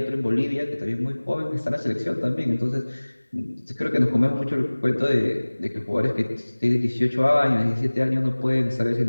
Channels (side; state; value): both; inverted; correlation -1.00